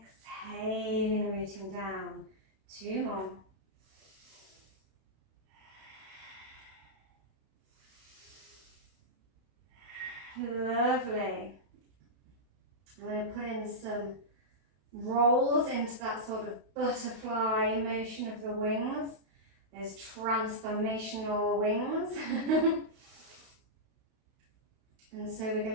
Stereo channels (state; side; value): late; left; 32 ms